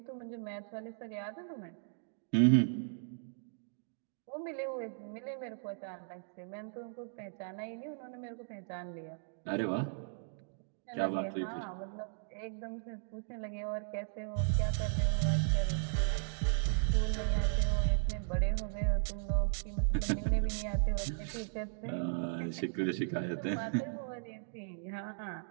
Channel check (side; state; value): left; silent; digital silence